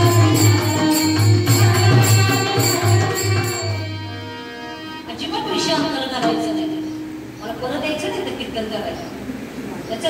अजिबात विषयांतर करायचं नाही. मला परत यायचं नाही तर कीर्तन करायचं. त्याचं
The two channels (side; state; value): both; identical; correlation 1.00